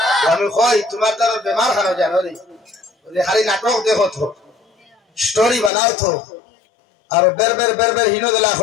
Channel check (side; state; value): right; drops out; at 5.7 s